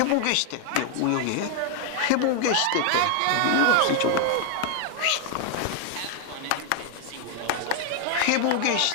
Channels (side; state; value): both; different; correlation 0.00